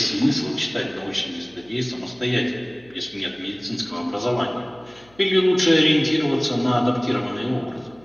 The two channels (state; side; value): noise; left; hum, 29 dB below the sound